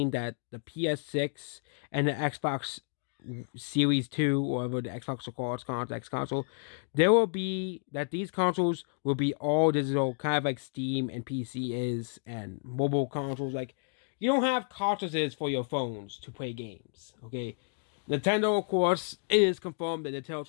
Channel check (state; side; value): silent; right; digital silence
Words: that the PS6 and the Xbox Series 2, or whatever the Xbox will call its X console, there will be that these consoles will be all digital, kind of like Steam and PC is, and mobile consoles. Like, you don't have cartridges for your phones to play games, okay? Nintendo, of course, it is confirmed that Nintendo